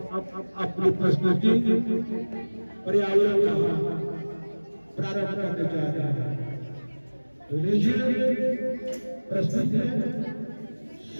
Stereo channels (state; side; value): inverted; both; correlation -1.00